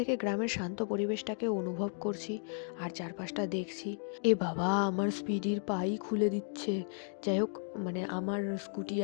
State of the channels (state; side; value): silent; right; 55 dB below the other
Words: গ্রামের শান্ত পরিবেশটাকে অনুভব করছি আর চারপাশটা দেখছি। এ বাবা, আমার স্পিডির পাই খুলে দিচ্ছে। যাই হোক, মানে আমার স্কুটি